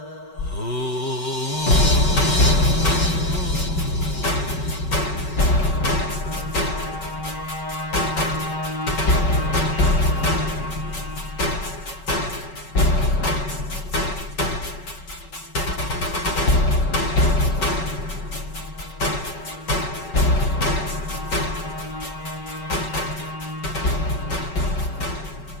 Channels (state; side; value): late; right; 5.3 ms